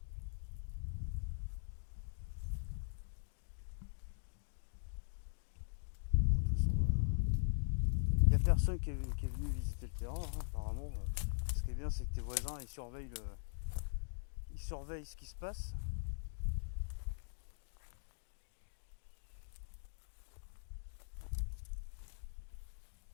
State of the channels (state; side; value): silent; right; digital silence